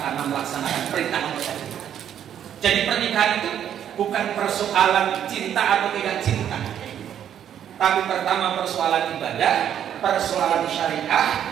karena melaksanakan perintah Allah. Jadi pernikahan itu bukan persoalan cinta atau tidak cinta, tapi pertama persoalan ibadah, persoalan syariah.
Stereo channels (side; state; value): left; quieter; 9.7 dB